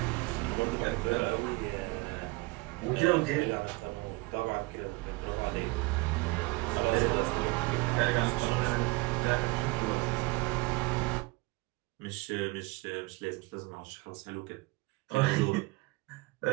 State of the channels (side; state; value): left; quieter; 24.1 dB